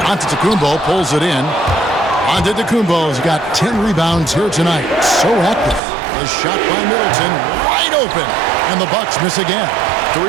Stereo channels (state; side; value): drops out; left; at 5.8 s